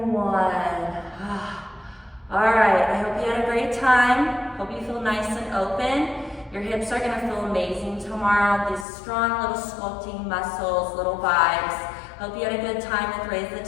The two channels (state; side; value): drops out; right; at 8.8 s